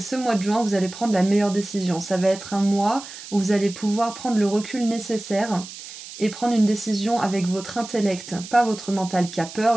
mois de juin, vous allez prendre la meilleure décision. Ça va être un mois où vous allez pouvoir prendre le recul nécessaire et prendre une décision avec votre intellect. Pas votre mental qui a peur,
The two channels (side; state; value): right; noise; hiss, 14 dB below the sound